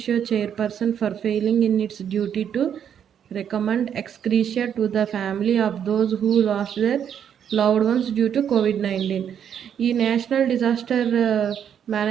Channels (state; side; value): quieter; left; 8.7 dB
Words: chairperson for failing in its duty to recommend ex gratia to the family of those who lost their loved ones due to కోవిడ్-19. ఈ నేషనల్ డిజాస్టర్